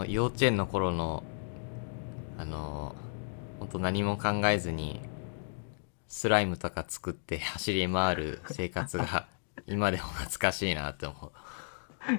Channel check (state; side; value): silent; right; digital silence